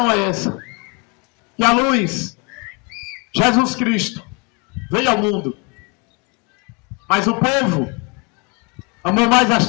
é essa: que a luz, Jesus Cristo, veio ao mundo, mas o povo amou mais as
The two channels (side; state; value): right; quieter; 30.8 dB